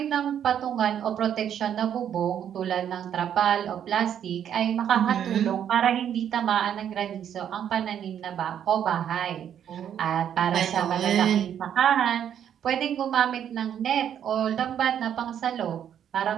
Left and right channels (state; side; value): quieter; left; 9.4 dB